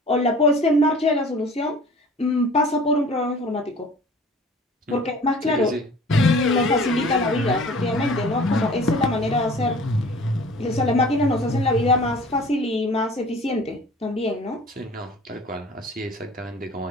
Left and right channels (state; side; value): normal; both; correlation 0.46